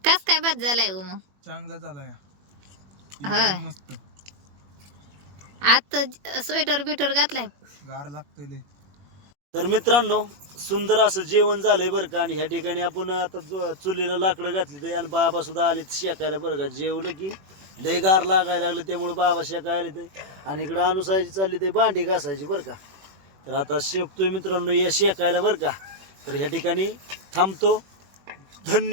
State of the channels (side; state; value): left; late; 21 ms